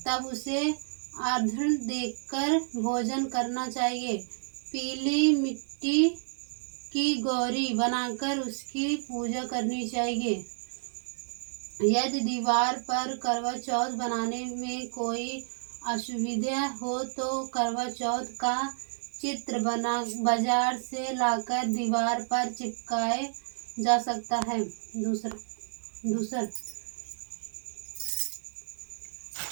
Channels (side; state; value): left; silent; digital silence